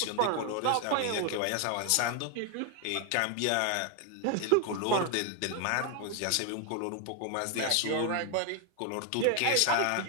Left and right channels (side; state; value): both; different; correlation 0.00